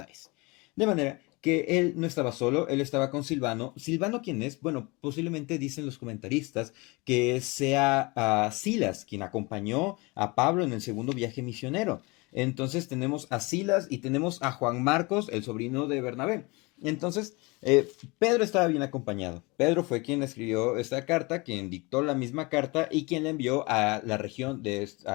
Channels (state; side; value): quieter; right; 26.1 dB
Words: De manera que él no estaba solo, él estaba con Silvano. ¿Silvano quién es? Bueno, posiblemente dicen los comentaristas que sea Silas, quien acompañó a Pablo en el segundo viaje misionero. Entonces tenemos a Silas y tenemos a Juan Marcos, el sobrino de Bernabé. Entonces, Pedro estaba bien acompañado. Pedro fue quien escribió esta carta, quien dictó la misma carta y quien la envió a la región